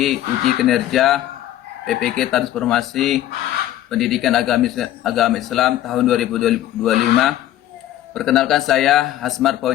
uji kinerja PPG Transformasi Pendidikan Agama Islam tahun 2025. Perkenalkan saya Hasmar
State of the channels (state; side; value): quieter; right; 13.2 dB